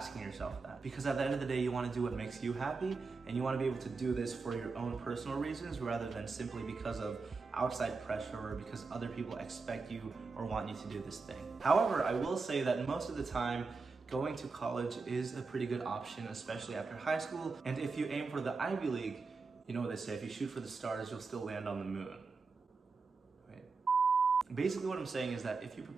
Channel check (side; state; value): left; quieter; 4.3 dB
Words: yourself that. Because at the end of the day, you want to do what makes you happy, and you want to be able to do this for your own personal reasons rather than simply because of outside pressure or because other people expect you or want you to do this thing. However, I will say that most of the time, going to college is a pretty good option, especially after high school. And if you aim for the Ivy League, you know what they say, if you shoot for the stars, you'll still land on the moon. Basically what I'm saying is that if you